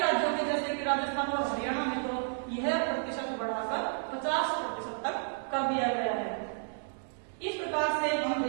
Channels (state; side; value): silent; left; digital silence